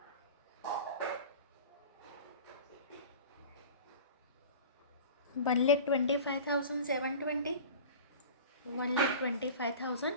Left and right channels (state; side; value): inverted; both; correlation -0.37